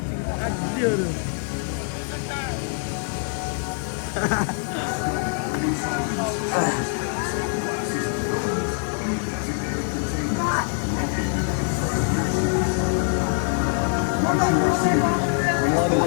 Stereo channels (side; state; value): right; silent; 56 dB below the other